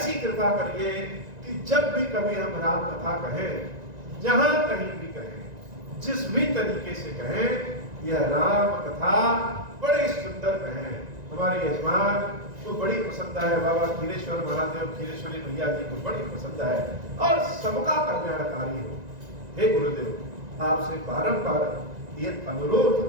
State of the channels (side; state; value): left; late; 1.9 ms